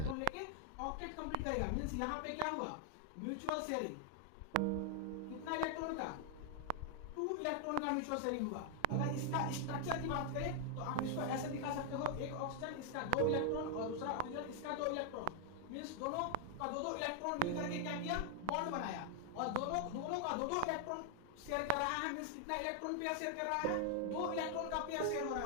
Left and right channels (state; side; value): different; both; correlation 0.00